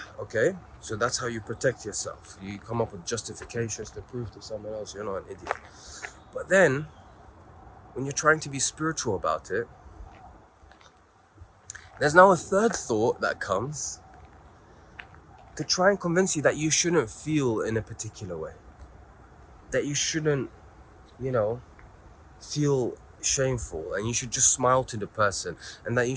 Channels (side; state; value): both; identical; correlation 1.00